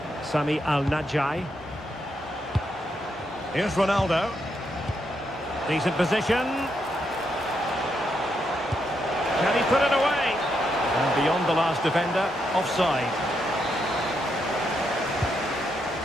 Sami Al-Najai. Here's Ronaldo. Decent position. Can he put it away? And beyond the last defender, offside.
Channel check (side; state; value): both; normal; correlation 0.80